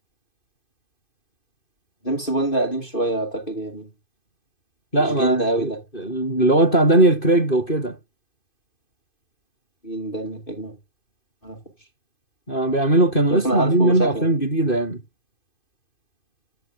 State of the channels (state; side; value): late; right; 2.5 ms